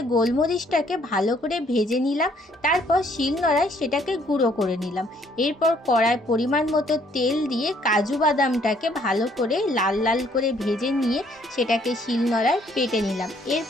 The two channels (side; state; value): both; normal; correlation 0.65